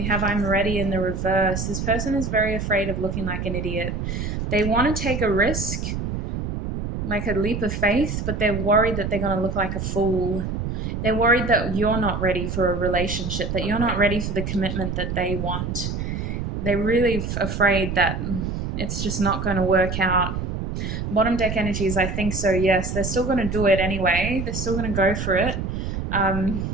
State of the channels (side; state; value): right; noise; rumble, 3 dB below the sound